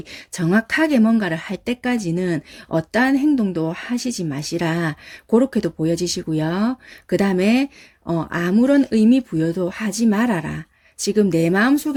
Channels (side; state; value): both; identical; correlation 1.00